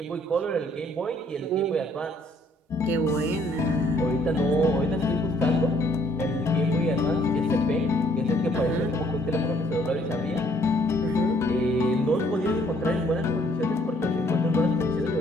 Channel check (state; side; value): normal; both; correlation 0.64